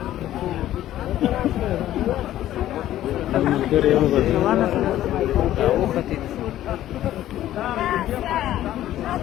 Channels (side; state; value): right; quieter; 13.2 dB